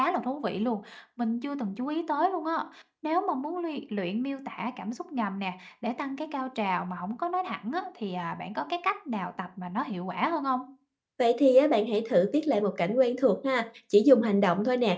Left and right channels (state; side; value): identical; both; correlation 1.00